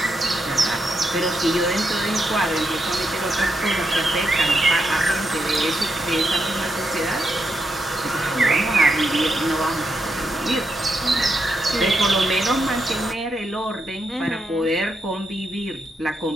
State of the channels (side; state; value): both; normal; correlation 0.82